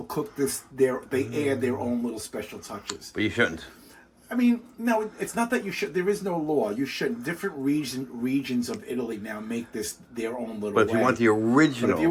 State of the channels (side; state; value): both; identical; correlation 1.00